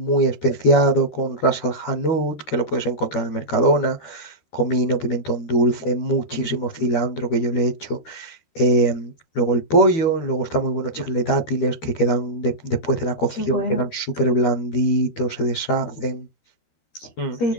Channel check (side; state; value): right; late; 13 ms